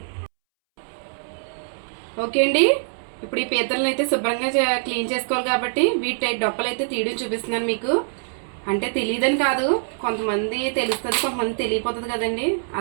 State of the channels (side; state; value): left; silent; 63 dB below the other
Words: ఓకే అండి, ఇప్పుడు ఈ పీతలను అయితే శుభ్రంగా క్లీన్ చేసుకోవాలి కాబట్టి వీటి డొప్పలు అయితే తీయడం చూపిస్తున్నాను మీకు. అంటే తెలియదని కాదు, కొంతమంది తెలుస్తుంది, కొంతమంది తెలియపోతుంది కదండి,